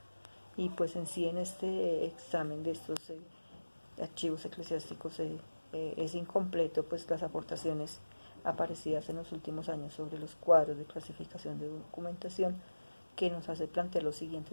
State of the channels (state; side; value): inverted; both; correlation -1.00